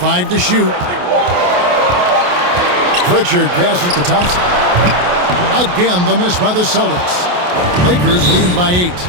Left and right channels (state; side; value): late; left; 28 ms